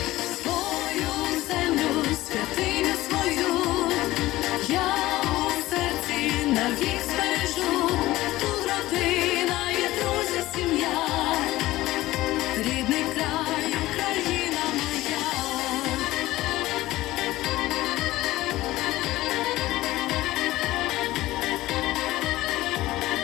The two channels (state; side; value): quieter; right; 17.0 dB